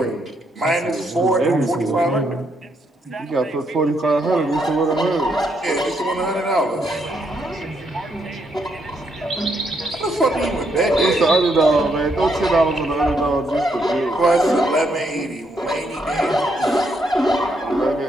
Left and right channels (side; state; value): both; normal; correlation 0.76